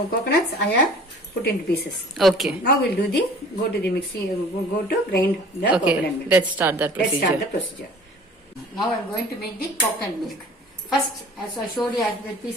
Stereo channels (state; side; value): normal; both; correlation 0.47